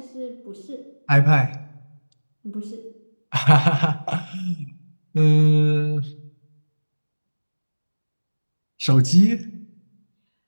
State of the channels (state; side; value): inverted; both; correlation -1.00